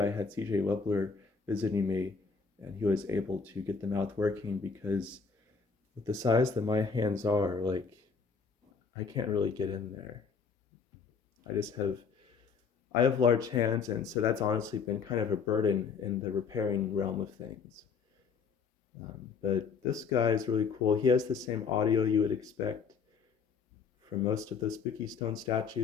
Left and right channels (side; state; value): right; quieter; 5.6 dB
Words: had CJ Webler visiting me, and he was able to get the mouth working, because with the size that my hands are, like, I can't really get in there. I have large hands, and so that's honestly been kind of a burden in the repairing realm of things. But this guy is really cool. He has the same audio you would expect from most of the Spooky Stone